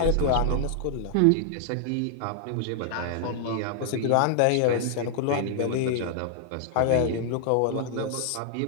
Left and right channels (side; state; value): both; different; correlation 0.00